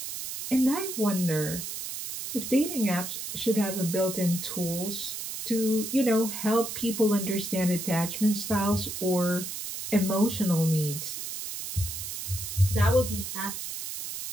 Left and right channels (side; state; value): right; noise; hiss, 6 dB below the sound